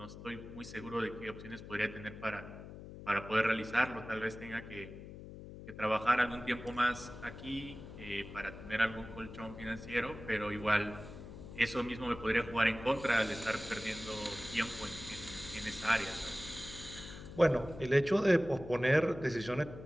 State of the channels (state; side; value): noise; left; hum, 13 dB below the sound